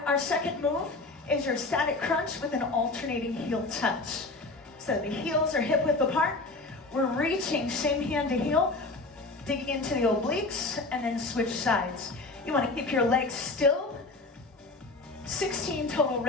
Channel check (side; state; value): right; quieter; 3.3 dB